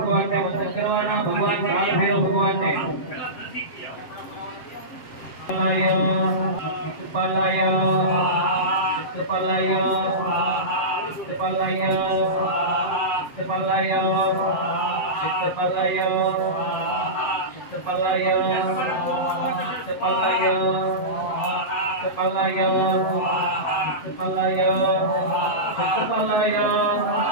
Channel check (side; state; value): right; late; 7.7 ms